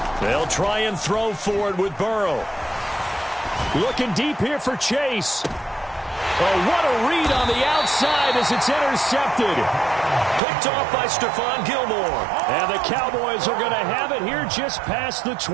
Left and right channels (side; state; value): left; drops out; at 10.4 s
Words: They'll try and throw for it with Burrow. Looking deep here for Chase. Oh, what a read on the outside as it's intercepted. Picked off by Stephon Gilmore. And the Cowboys are going to have it here just past the